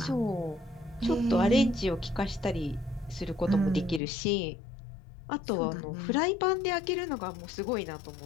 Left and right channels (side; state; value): right; drops out; at 4.0 s